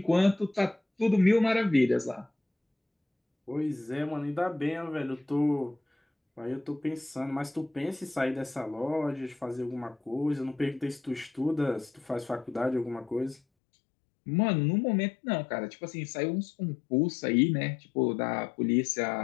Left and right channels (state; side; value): drops out; right; at 13.4 s